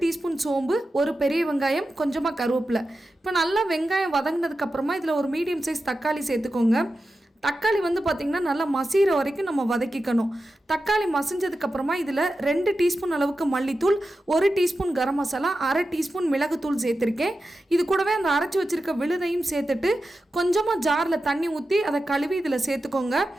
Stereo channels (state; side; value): normal; both; correlation 0.91